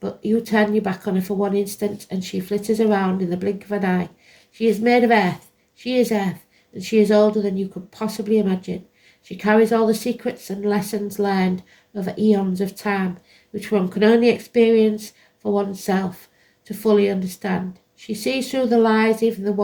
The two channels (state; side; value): identical; both; correlation 1.00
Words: you turn your back on her for one instant and she flitters around in the blink of an eye. She is made of earth, she is earth, and she is older than you could possibly imagine. She carries all the secrets and lessons learned over eons of time, which one can only experience for oneself to fully understand. She sees through the lies, even the